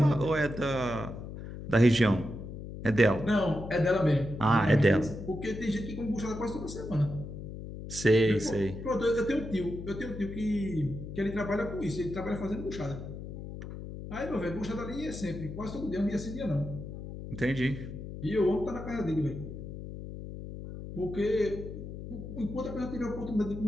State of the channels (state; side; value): noise; left; hum, 9 dB below the sound